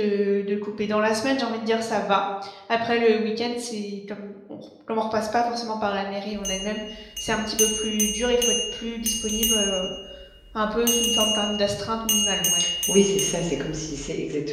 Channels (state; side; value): identical; both; correlation 1.00